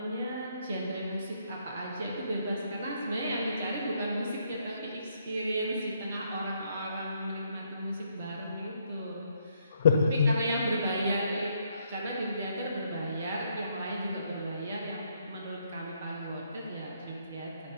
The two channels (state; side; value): inverted; both; correlation -0.72